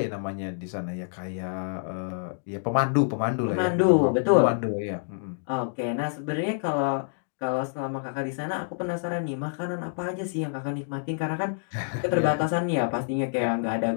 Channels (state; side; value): silent; right; digital silence